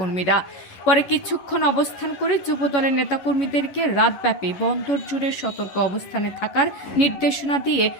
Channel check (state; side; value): late; right; 11 ms